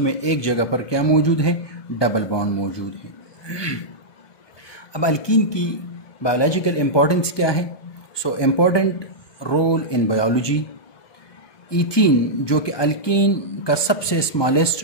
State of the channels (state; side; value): late; right; 1.2 ms